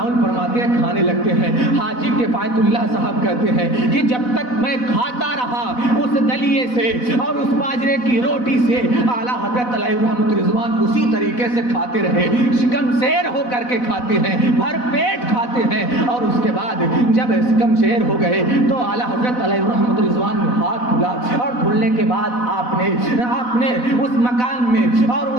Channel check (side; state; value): right; late; 4.0 ms